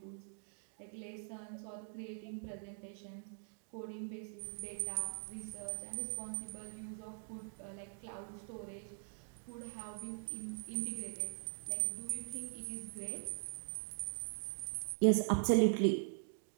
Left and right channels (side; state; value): left; silent; digital silence